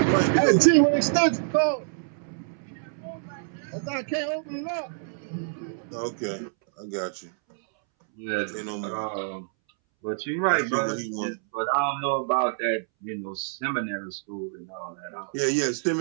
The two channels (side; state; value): left; silent; 60 dB below the other